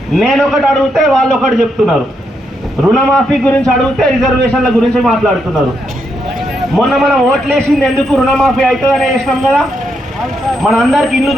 నేను ఒకటి అడిగితే వాళ్ళు ఒకటి చెప్తున్నారు. రుణమాఫీ గురించి అడిగితే రిజర్వేషన్ల గురించి మాట్లాడుతున్నారు. మొన్న మనం ఓట్లేసింది ఎందుకు? రుణమాఫీ అవుతుందని వేసినాం కదా, మన అందరికి ఇల్లు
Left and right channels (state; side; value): normal; both; correlation 0.80